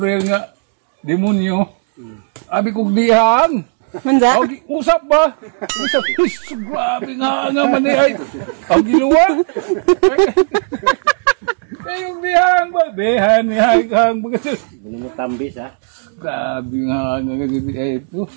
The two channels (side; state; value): left; silent; digital silence